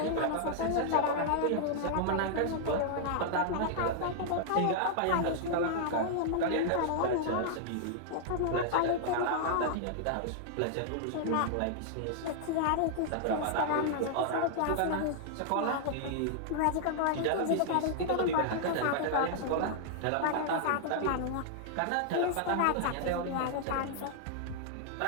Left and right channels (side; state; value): both; different; correlation -0.01